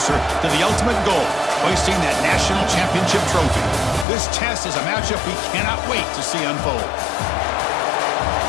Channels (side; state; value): right; drops out; at 4.0 s